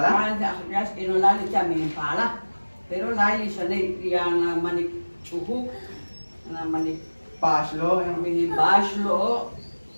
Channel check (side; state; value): both; inverted; correlation -1.00